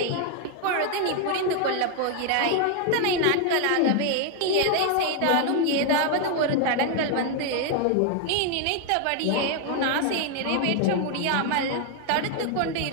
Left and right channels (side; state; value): both; different; correlation 0.01